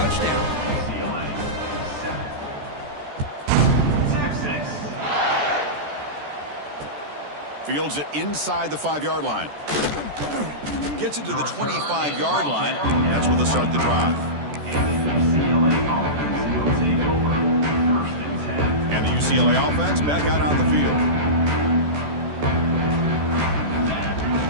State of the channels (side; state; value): left; late; 14 ms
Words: Fields it inside the 5-yard line. Gets it to the 25-yard line. That's where they'll start the drive. And the UCLA offense back out on the field.